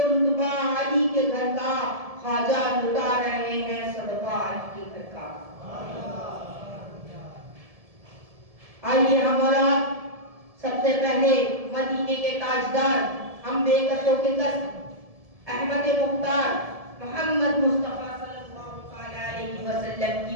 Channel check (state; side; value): late; left; 1.7 ms